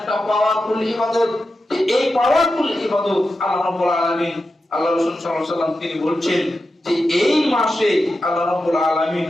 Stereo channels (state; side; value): normal; both; correlation 0.90